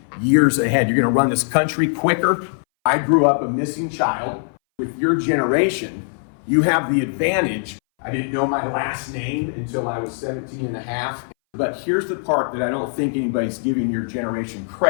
years ahead. You're going to run this country quicker. I grew up a missing child. With your generation, you have the advantage. I didn't know my last name until I was 17 and a half. But here's the part that I don't think anybody's giving your generation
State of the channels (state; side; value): silent; right; 62 dB below the other